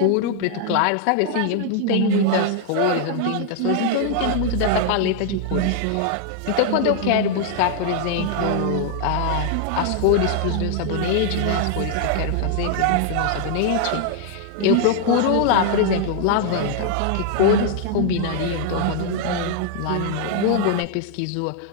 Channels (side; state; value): both; different; correlation 0.00